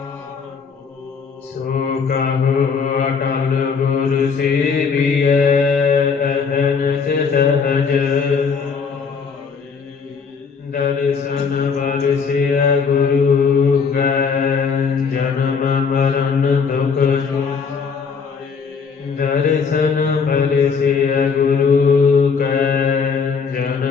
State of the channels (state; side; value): quieter; right; 5.7 dB